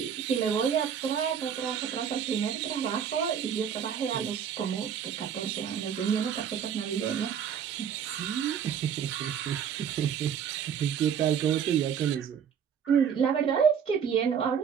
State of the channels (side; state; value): left; quieter; 7.9 dB